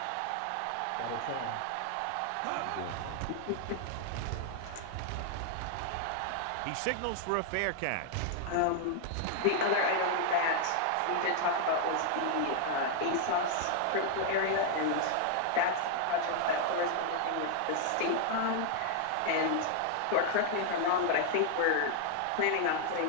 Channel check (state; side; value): different; both; correlation 0.00